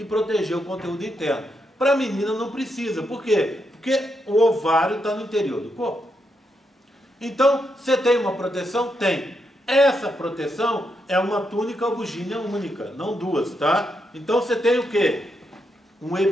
proteger o conteúdo interno. Para a menina não precisa. Por quê? Porque o ovário está no interior do corpo. Então, você tem uma proteção? Tem. Essa proteção é uma túnica albugínea única, não duas, tá? Então, você tem o quê? Um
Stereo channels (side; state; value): both; normal; correlation 0.82